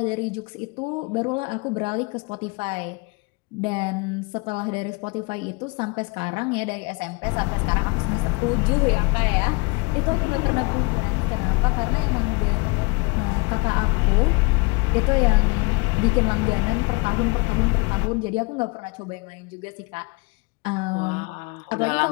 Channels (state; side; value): quieter; right; 28.1 dB